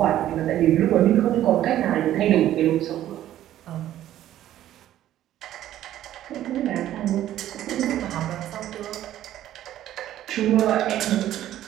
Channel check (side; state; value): left; quieter; 12.7 dB